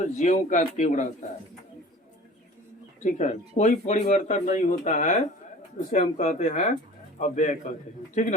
ज्यों का त्यों रहता है। ठीक है, कोई परिवर्तन नहीं होता है, उसे हम कहते हैं अव्यय कहते हैं। ठीक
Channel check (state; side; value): normal; both; correlation 0.43